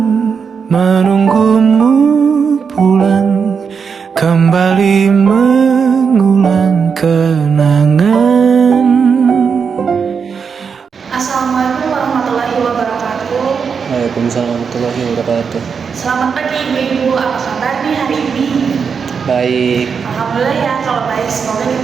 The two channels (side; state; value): left; quieter; 6.1 dB